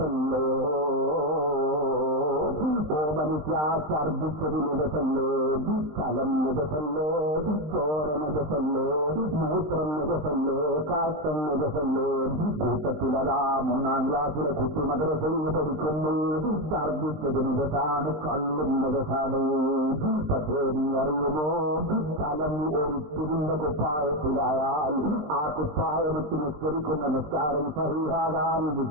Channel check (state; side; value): late; left; 20 ms